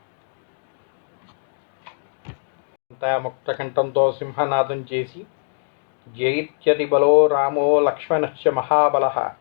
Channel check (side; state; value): right; silent; digital silence